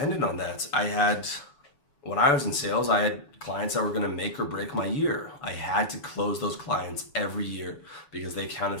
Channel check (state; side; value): late; right; 7.0 ms